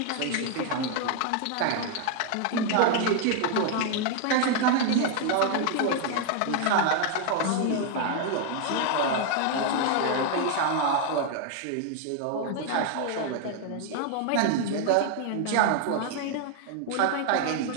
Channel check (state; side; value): different; both; correlation 0.00